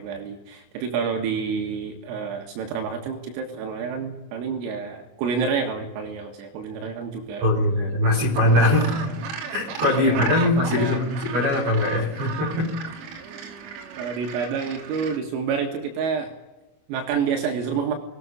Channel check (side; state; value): left; late; 25 ms